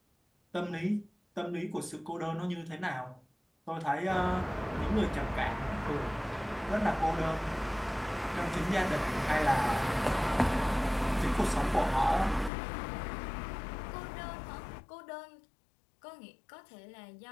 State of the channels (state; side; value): drops out; right; at 12.5 s